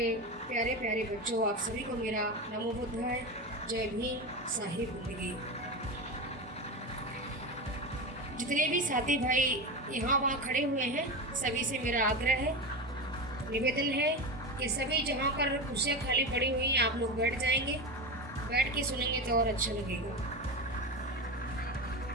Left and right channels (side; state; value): both; normal; correlation 0.21